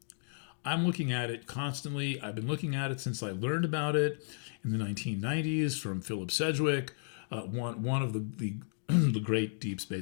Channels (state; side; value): silent; right; digital silence